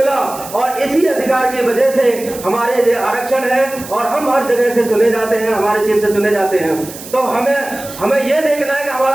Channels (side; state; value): right; noise; hiss, 14 dB below the sound